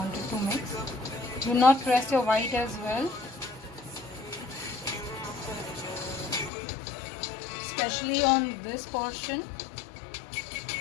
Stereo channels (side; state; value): right; drops out; at 6.5 s